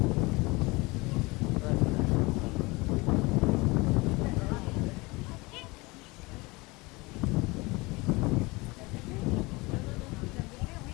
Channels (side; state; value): right; quieter; 24.2 dB